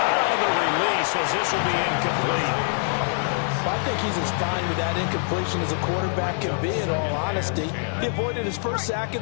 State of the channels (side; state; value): right; silent; 58 dB below the other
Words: on the release as this will be incomplete. I think he's as fine with that incompletion as a quarterback can be, in all honesty. He avoided his first sack of